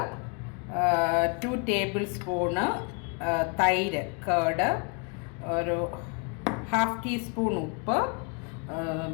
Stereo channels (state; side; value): quieter; right; 36.1 dB